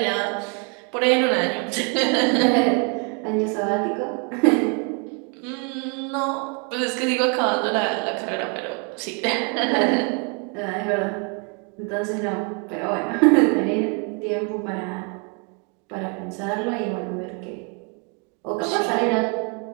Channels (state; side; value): quieter; left; 36.4 dB